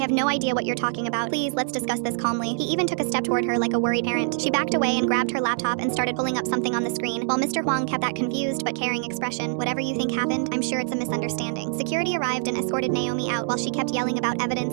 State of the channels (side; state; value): left; silent; digital silence